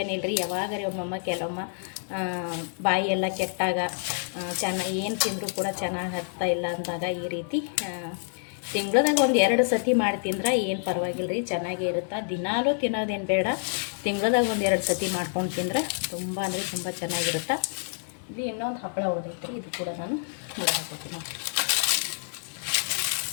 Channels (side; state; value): right; silent; digital silence